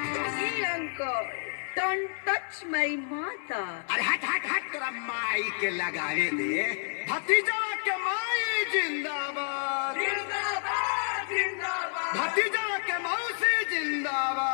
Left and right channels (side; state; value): right; silent; digital silence